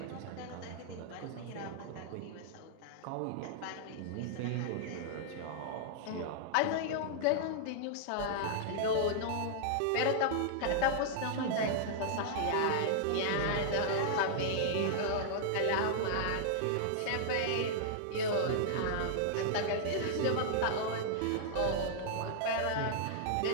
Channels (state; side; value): different; both; correlation -0.01